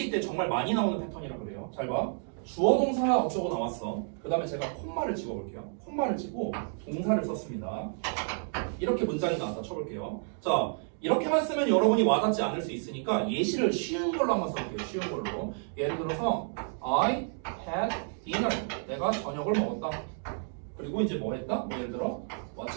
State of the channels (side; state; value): left; silent; 56 dB below the other